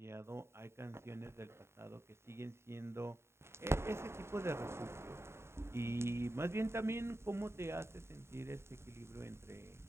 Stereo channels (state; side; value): late; left; 0.13 ms